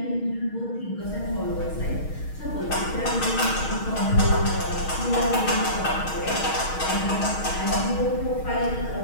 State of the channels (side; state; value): right; late; 6.4 ms